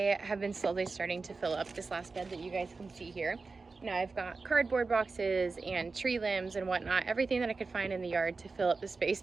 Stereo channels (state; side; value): quieter; left; 4.1 dB